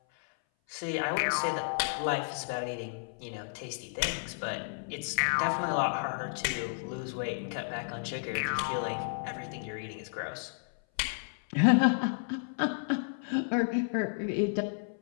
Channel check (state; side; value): silent; right; 56 dB below the other